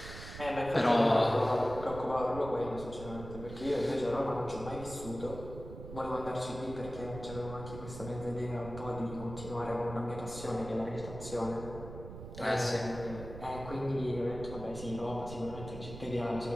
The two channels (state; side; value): noise; right; rumble, 11 dB below the sound